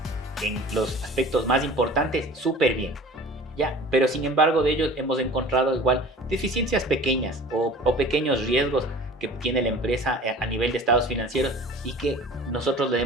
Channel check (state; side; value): normal; both; correlation 0.42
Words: en los aspectos más importantes súper bien. Ya, pero sin embargo de ellos hemos encontrado igual deficiencias pequeñas o pequeños riesgos que tiene la empresa a nivel de estados financieros y que nosotros le